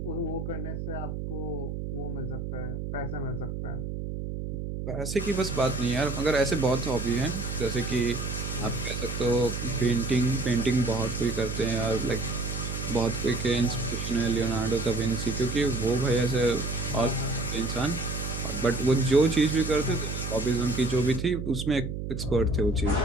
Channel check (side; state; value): right; noise; hum, 5 dB below the sound